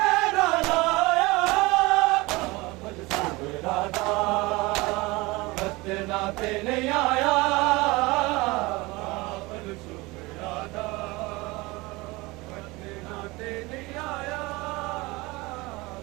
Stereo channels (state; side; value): quieter; left; 22.7 dB